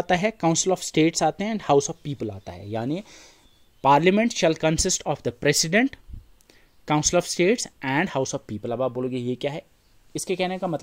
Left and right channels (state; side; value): identical; both; correlation 1.00